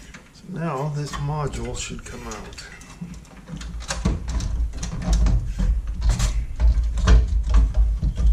So now this module should come out.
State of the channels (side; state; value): both; identical; correlation 1.00